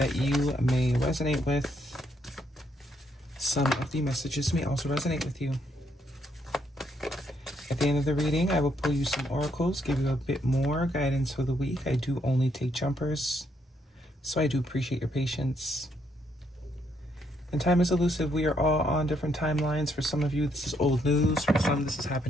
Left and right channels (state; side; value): normal; both; correlation 0.73